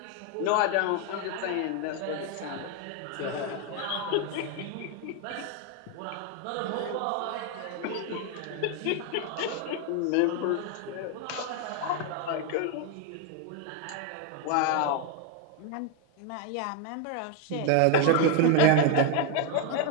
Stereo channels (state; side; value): different; both; correlation 0.01